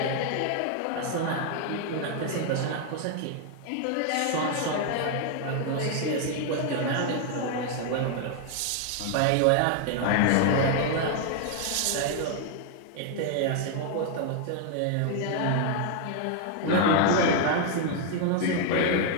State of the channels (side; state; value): both; different; correlation 0.00